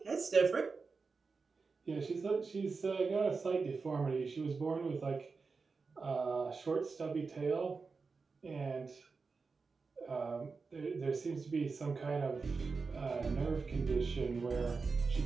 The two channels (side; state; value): left; quieter; 4.6 dB